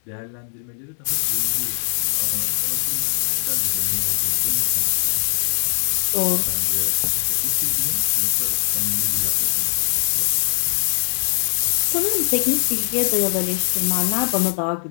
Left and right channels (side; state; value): right; silent; digital silence